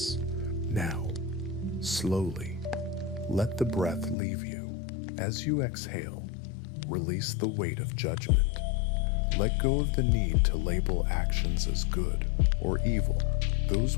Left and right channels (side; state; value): right; drops out; at 4.2 s